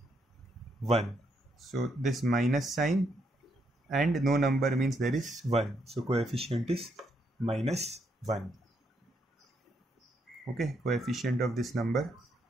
1. So this minus sign and no number means there is 1. So coefficient is minus 1. Okay, coefficient of this number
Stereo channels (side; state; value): both; normal; correlation 0.76